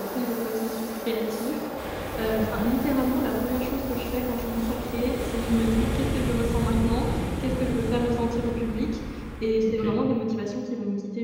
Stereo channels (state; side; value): identical; both; correlation 1.00